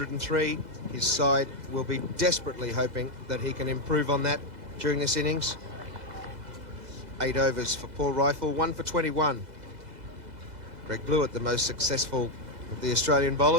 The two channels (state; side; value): late; left; 2.0 ms